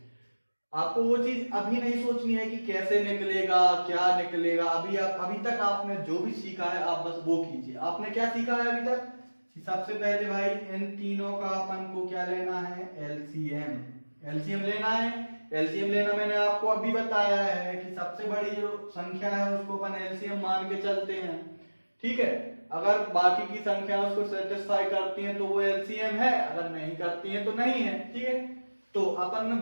आपको वो चीज अभी नहीं सोचनी है कि कैसे निकलेगा क्या निकलेगा, अभी तक आपने जो भी सीखा है आप बस वो कीजिए। आपने क्या सीखा है अभी तक, सबसे पहले भाई इन तीनों का अपन को क्या लेना है एलसीएम, एलसीएम लेना है। एलसीएम लेना मैंने आपको अभी बताया है कि सबसे बड़ी जो संख्या है उसको अपन एलसीएम मान के चलते हैं, ठीक है। अगर बाकी की संख्या उसको सेटिस्फाई करती है तो वो एलसीएम है, अगर नहीं करती है तो नहीं है, ठीक है। तो अपन ने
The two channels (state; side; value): inverted; both; correlation -1.00